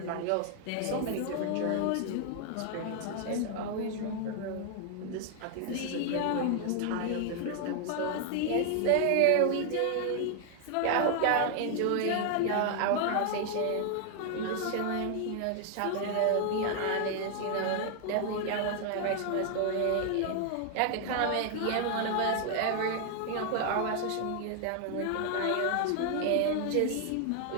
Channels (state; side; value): different; both; correlation 0.00